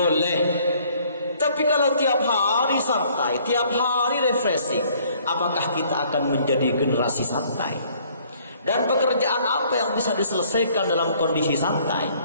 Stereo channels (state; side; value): inverted; both; correlation -0.60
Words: Tapi kalau tiap hari santai, tiap hari refreshing, apakah kita akan menjadi generasi santai? Dan pekerjaan apa yang bisa diselesaikan dalam kondisi santai?